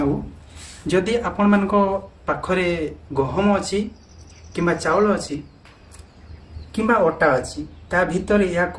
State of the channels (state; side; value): identical; both; correlation 1.00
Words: ଯଦି ଆପଣମାନଙ୍କ ପାଖରେ ଗହମ ଅଛି କିମ୍ବା ଚାଉଳ ଅଛି କିମ୍ବା ଅଟା ଅଛି, ତା ଭିତରେ